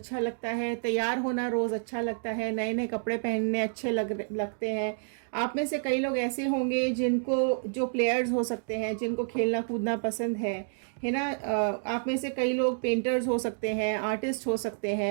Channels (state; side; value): silent; left; digital silence